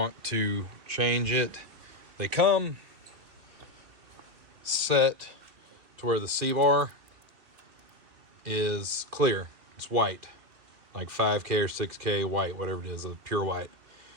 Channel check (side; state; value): left; late; 2.6 ms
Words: to change it, they come set to where the C-bar is clear. It's white, like 5K or 6K white, whatever it is, a pure white.